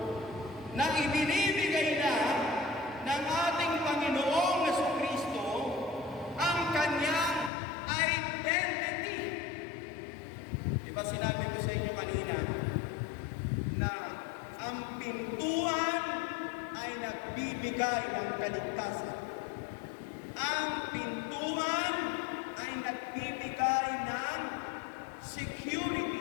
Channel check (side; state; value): right; drops out; at 7.5 s